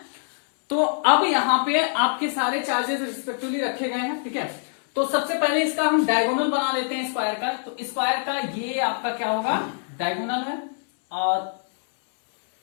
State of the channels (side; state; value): right; silent; 62 dB below the other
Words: तो अब यहां पे आपके सारे चार्जेस रिस्पेक्टिवली रखे गए हैं। ठीक है, तो सबसे पहले इसका हम डायगोनल बना लेते हैं स्क्वायर का। तो स्क्वायर का ये आपका क्या होगा? डायगोनल है और